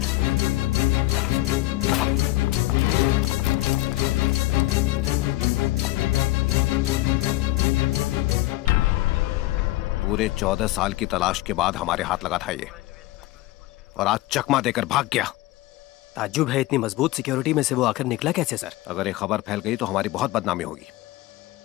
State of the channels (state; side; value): quieter; right; 18.2 dB